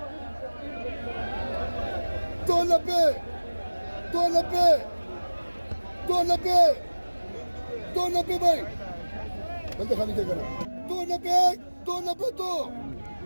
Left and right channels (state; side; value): inverted; both; correlation -1.00